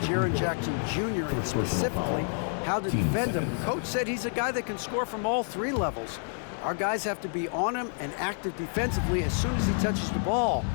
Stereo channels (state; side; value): silent; right; 59 dB below the other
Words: Jaren Jackson Jr., and specifically how to defend him. Coach said he's a guy that can score from all three levels. Our guys have to be on him and active defensively as soon as he touches the ball.